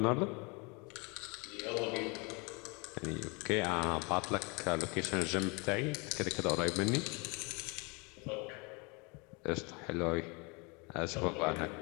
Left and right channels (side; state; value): right; quieter; 30.0 dB